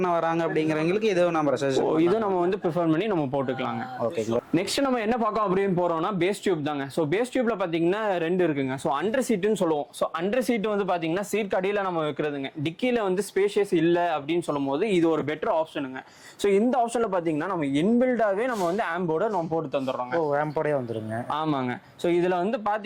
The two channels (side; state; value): both; identical; correlation 1.00